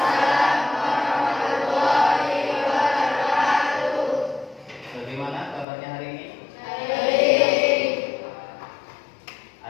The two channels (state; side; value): drops out; right; at 5.7 s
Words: warahmatullahi wabarakatuh. Bagaimana kabarnya hari ini? Baik.